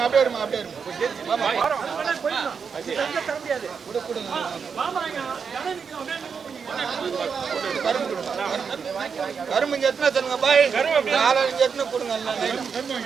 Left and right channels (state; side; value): quieter; left; 6.1 dB